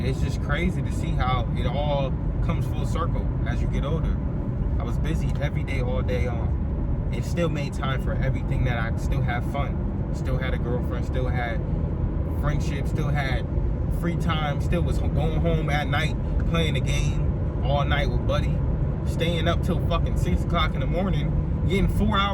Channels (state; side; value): identical; both; correlation 1.00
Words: it's just crazy to see how it all comes full circle as you get older. I was busy every day, all day on. It still made time for everything that I still have fun. Still had a girlfriend, still had friendship, still had free time, still was going home at night, playing the game all night with Buddy, staying up till fucking 6 o'clock in the morning, getting 4